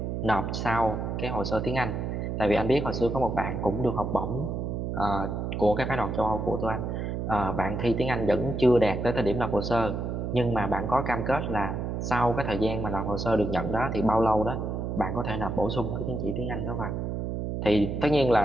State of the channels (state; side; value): noise; right; hum, 3 dB below the sound